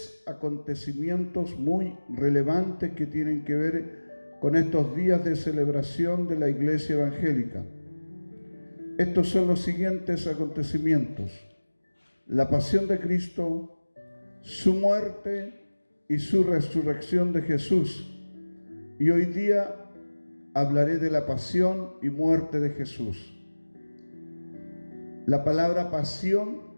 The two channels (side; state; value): both; inverted; correlation -1.00